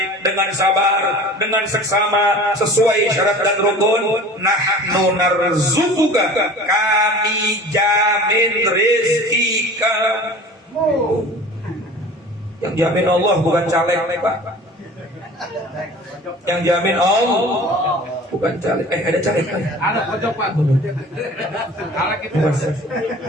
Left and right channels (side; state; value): both; normal; correlation 0.42